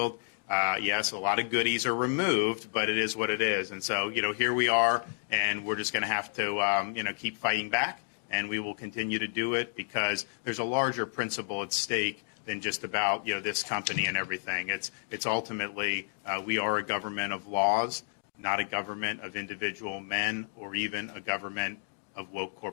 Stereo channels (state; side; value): silent; right; digital silence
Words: Yes, a lot of goodies are removed, but it is what it is. And so, here we are, and we're just going to have to, keep fighting back, and we will continue to do it because there's a larger principle at stake than just about, this company and everything. It's ultimately, we are a government of laws, not a government of individual men or even a government of woke